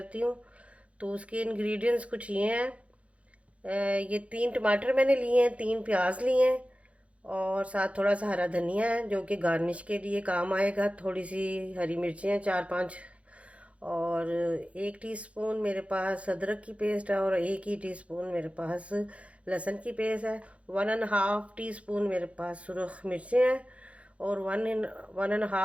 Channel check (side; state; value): left; late; 0.063 ms